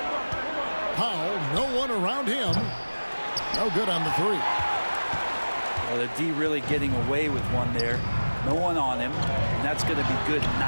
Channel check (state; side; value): inverted; both; correlation -1.00